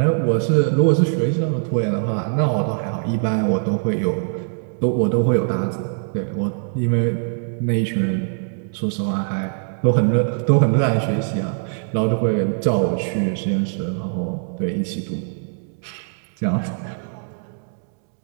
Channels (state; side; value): silent; left; digital silence